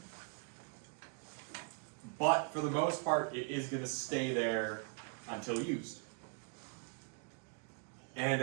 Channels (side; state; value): left; quieter; 36.3 dB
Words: But for the most part, it is going to stay there until used. And